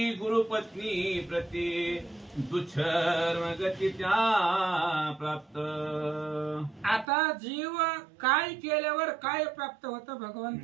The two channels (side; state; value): left; drops out; at 7.1 s